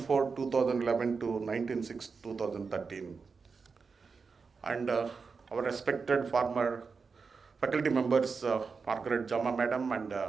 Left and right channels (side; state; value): left; quieter; 5.0 dB